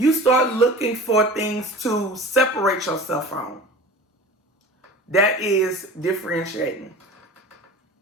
start looking for things to separate yourself from. That is differentiating.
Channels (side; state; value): both; normal; correlation 0.38